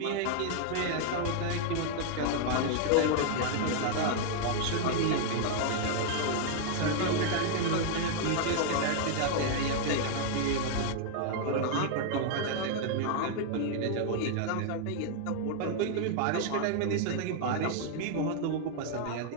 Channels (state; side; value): different; both; correlation 0.00